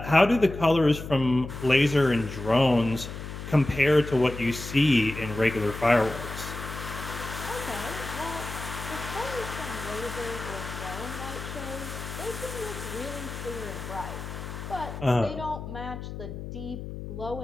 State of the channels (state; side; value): noise; left; hum, 9 dB below the sound